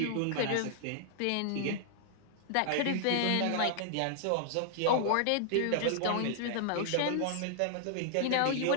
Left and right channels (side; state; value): both; different; correlation 0.00